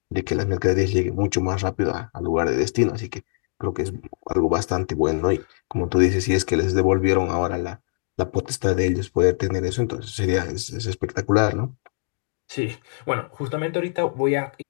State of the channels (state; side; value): silent; right; digital silence